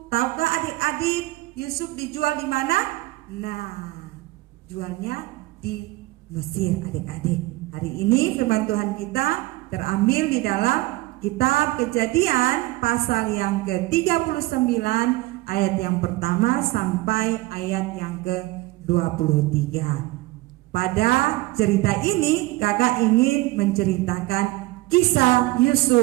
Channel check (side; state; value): left; quieter; 19.4 dB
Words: Tahukah adik-adik Yusuf dijual di mana? Nah, jualnya di Mesir adik-adik. Hari ini firman Tuhan kita terambil di dalam kitab Kejadian pasal yang ke-39 ayat yang pertama sampai ayat yang ke-23. Pada cerita ini kakak ingin menceritakan kisah